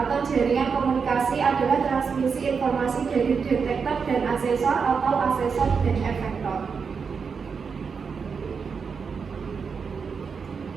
jaringan komunikasi adalah transmisi informasi dari detektor dan asesor atau asesor dan efektor.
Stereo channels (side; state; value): left; quieter; 5.7 dB